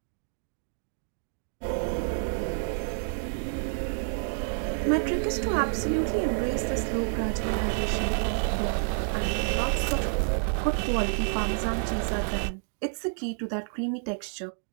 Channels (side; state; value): left; silent; 59 dB below the other